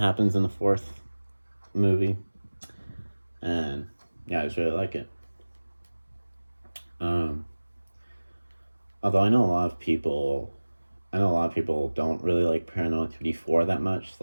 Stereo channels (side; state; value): both; inverted; correlation -1.00